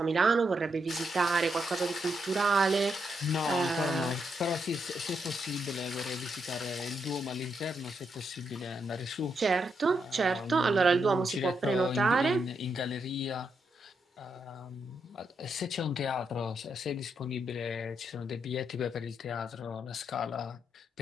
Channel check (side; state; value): both; normal; correlation 0.81